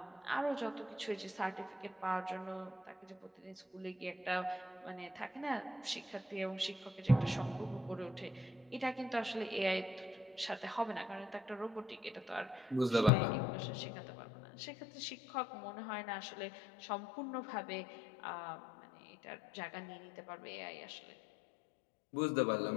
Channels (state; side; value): drops out; right; at 13.1 s